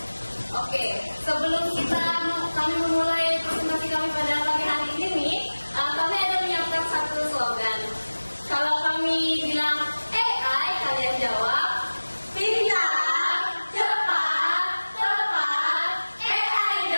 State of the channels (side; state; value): both; inverted; correlation -1.00